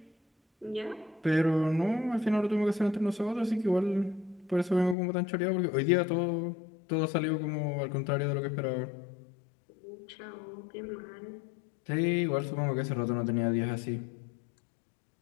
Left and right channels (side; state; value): right; drops out; at 5.0 s